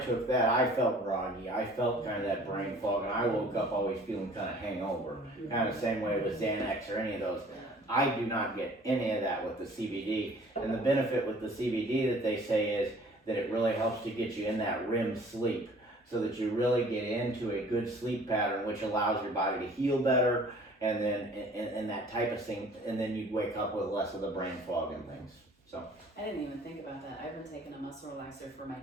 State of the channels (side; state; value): both; normal; correlation 0.52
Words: that, I felt groggy, I felt kind of that brain fog, and I woke up always feeling kind of hangover, kind of same way with Xanax or any of those. I do not get any of that with the CBD, and the benefit with the CBD that they say is that it really helps to get you in that REM sleep, so that you really get into a good sleep pattern, which allows your body to heal better, and then and that type of thing, and then you wake up with less of the brain fog and things. So I didn't even think about that. I've been taking a muscle relaxer for my